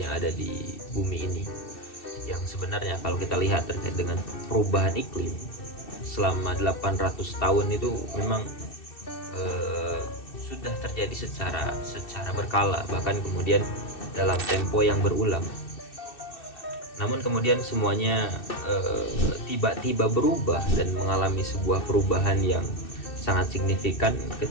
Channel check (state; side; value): late; right; 2.6 ms